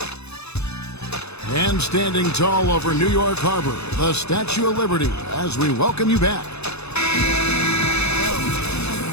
And standing tall over New York Harbor, the Statue of Liberty, as we welcome you back.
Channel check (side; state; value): right; late; 0.80 ms